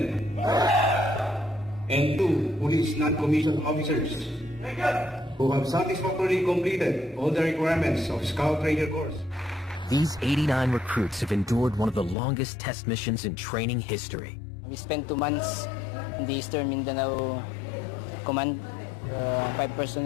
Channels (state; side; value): drops out; right; at 12.2 s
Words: and 2 police non-commissioned officers who have satisfactorily completed all the requirements of Scout Ranger course. These 89 recruits have endured one of the longest test missions in training history. We spent 2 months in the Eastern Mindanao Command. 5